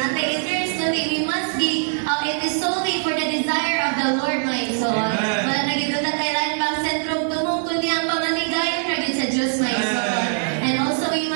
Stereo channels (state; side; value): silent; left; digital silence